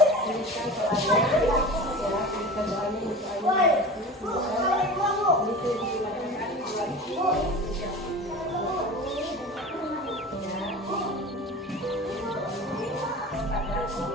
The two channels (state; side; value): normal; both; correlation 0.34